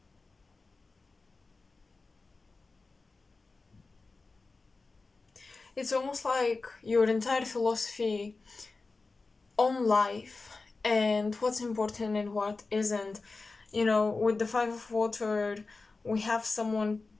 It's almost like your entire philosophy on life and what's important and what isn't. With the Five of Water, we have someone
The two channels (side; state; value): right; quieter; 3.8 dB